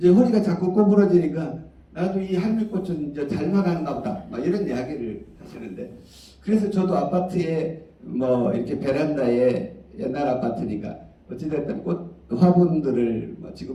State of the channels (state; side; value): identical; both; correlation 1.00